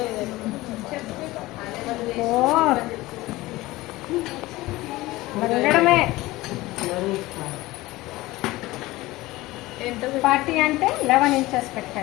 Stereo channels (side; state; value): right; quieter; 19.1 dB